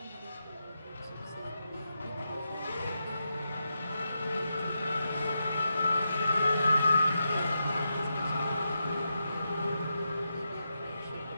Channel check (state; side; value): inverted; both; correlation -0.86